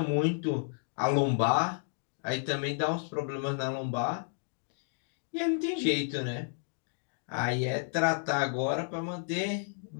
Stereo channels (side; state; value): right; silent; 57 dB below the other